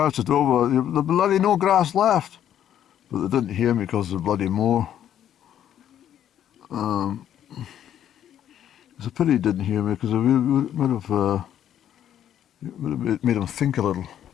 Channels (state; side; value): quieter; right; 10.5 dB